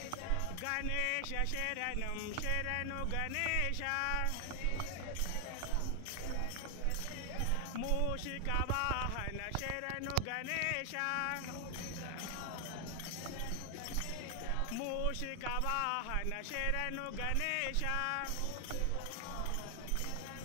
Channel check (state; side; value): different; both; correlation 0.00